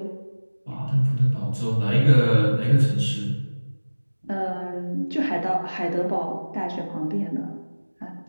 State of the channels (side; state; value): both; inverted; correlation -1.00